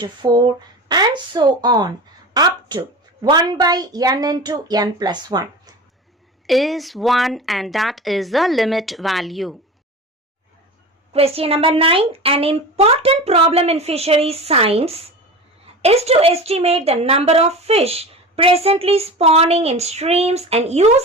4 and so on up to 1 by n into n plus 1 is 1, and that is the limit value. Question number 9. An important problem in fisheries science is to estimate the number of fish presently spawning in streams and use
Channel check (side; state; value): both; normal; correlation 0.31